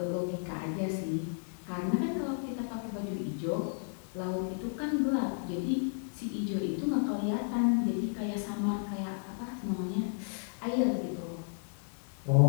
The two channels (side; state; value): right; silent; digital silence